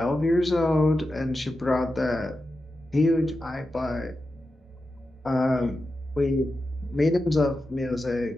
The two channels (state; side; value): normal; both; correlation 0.90